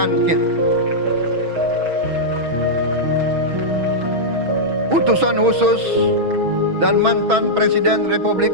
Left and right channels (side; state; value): left; late; 6.2 ms